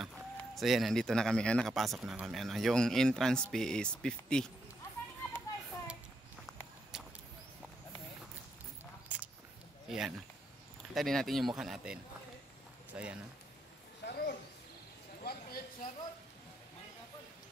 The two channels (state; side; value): normal; both; correlation 0.80